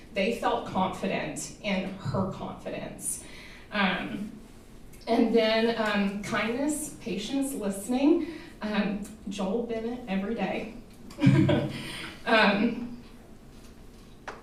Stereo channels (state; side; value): identical; both; correlation 1.00